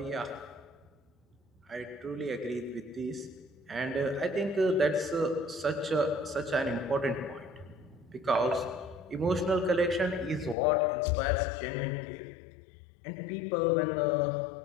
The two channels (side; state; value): right; drops out; at 10.6 s